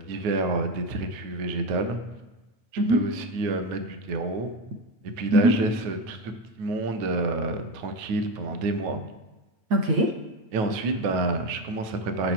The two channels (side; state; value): left; late; 9.4 ms